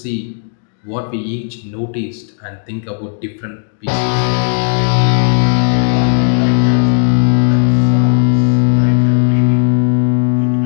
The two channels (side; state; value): right; silent; digital silence